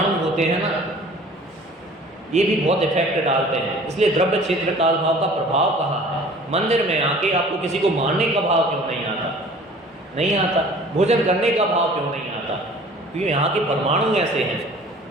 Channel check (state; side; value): normal; both; correlation 0.48